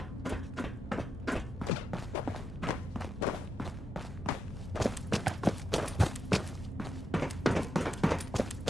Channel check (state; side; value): normal; both; correlation 0.85